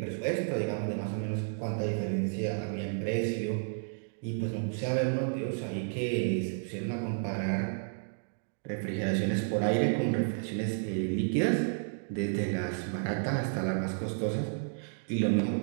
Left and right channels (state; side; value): silent; left; digital silence